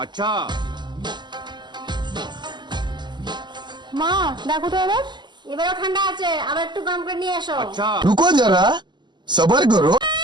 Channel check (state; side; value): late; left; 0.21 ms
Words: আচ্ছা। মা দেখো তো এবারও ঠান্ডা আছে, আবার একটু গরম করে নিয়ে এসো। আচ্ছা। रुको जरा सबर करो।